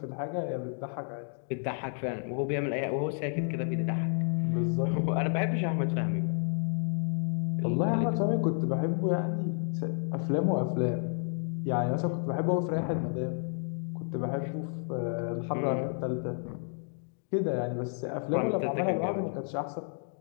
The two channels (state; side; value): silent; right; 57 dB below the other